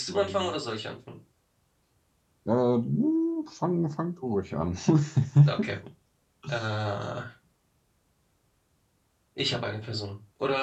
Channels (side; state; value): both; identical; correlation 1.00